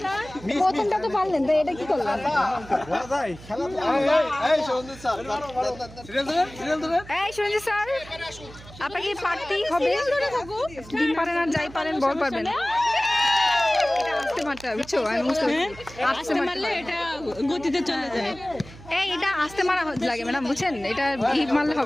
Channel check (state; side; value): noise; right; hum, 18 dB below the sound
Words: প্রথমটা তো পারলেন, তো এটা কি করলেন? এই সঞ্জিত স্যার, আপনাকে পারতেই হবে। ডিম পারেন আর যাই পারেন, বল পারবেন। এটা আস্তে মারতে হবে, বুঝছো? আমি বুঝতে পারছি, আস্তে মারলে এটা গতিতে চলে যায়। এই এটা আস্তে মারা লাগে ম্যাডাম, বুঝছেন? এটা হিট মারলে